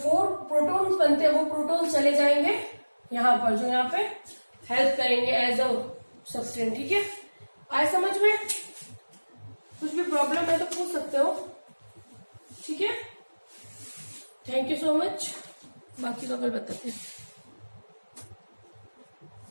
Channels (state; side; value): inverted; both; correlation -1.00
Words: प्रोटॉन्स बनते हैं वो प्रोटॉन्स चले जाएंगे यहाँ पर, जो यहाँ पे हेल्प करेंगे एज अ सब्सटेंस। ठीक है, आए समझ में। सकते हो। ठीक है, थैंक यू सो मच। बाकी तो कल बताते हैं।